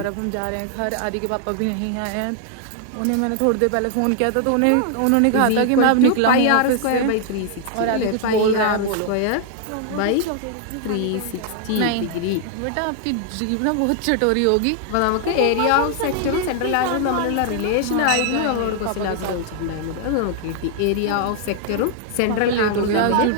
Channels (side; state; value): both; different; correlation 0.00